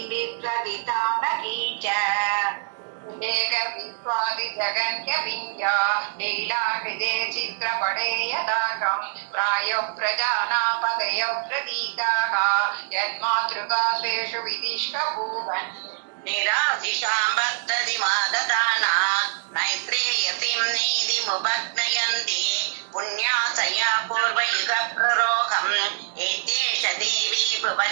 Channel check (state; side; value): silent; left; digital silence